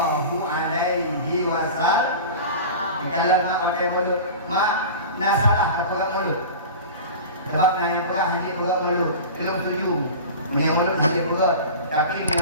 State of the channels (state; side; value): inverted; both; correlation -0.34